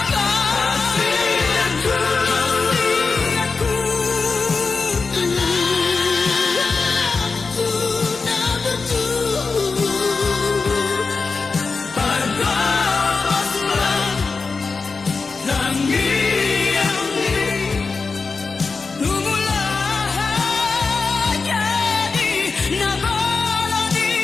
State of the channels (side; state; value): right; quieter; 4.4 dB